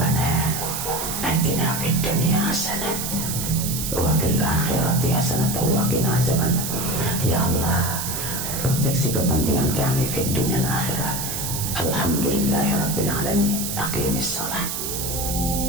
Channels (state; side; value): noise; right; hiss, 4 dB below the sound